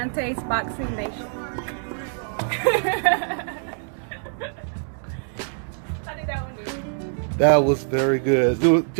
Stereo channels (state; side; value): silent; left; 58 dB below the other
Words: Boxing Nation. How did that one do? That was very good. Do